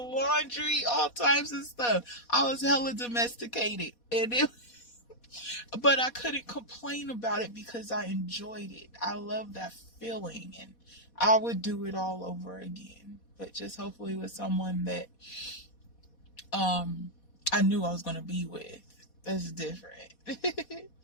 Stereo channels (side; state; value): right; late; 4.2 ms